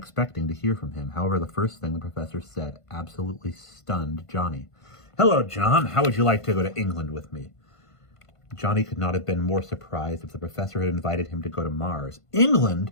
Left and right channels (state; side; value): late; right; 1.5 ms